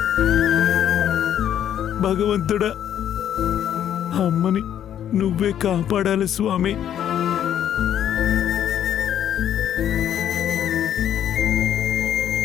భగవంతుడా, అమ్మని నువ్వే కాపాడాలి స్వామి.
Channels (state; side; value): quieter; right; 10.2 dB